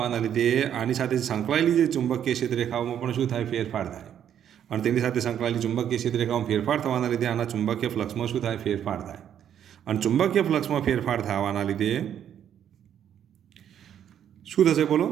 લીધે આની સાથે સંકળાયેલી જે ચુંબકીય ક્ષેત્ર રેખાઓમાં પણ શું થાય? ફેરફાર થાય. અને તેની સાથે સંકળાયેલી ચુંબકીય ક્ષેત્ર રેખાઓમાં ફેરફાર થવાના લીધે આના ચુંબકીય ફ્લક્સમાં શું થાય? ફેરફાર થાય. અને ચુંબકીય ફ્લક્સમાં ફેરફાર થવાના લીધે શું થશે બોલો?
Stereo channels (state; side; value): quieter; left; 9.6 dB